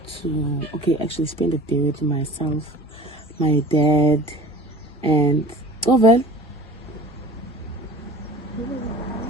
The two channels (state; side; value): normal; both; correlation 0.43